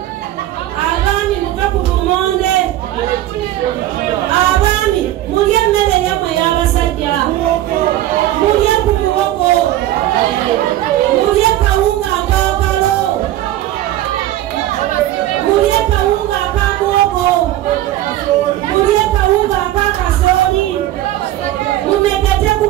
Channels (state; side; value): quieter; left; 14.1 dB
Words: abaami muve ku bumonde abaami mulya emmere yammwe y'abasajja mulya ku muwogo mulya kawunga akakalo mulya kawunga akamuwogo mulya kawunga akakasooli mumegete ku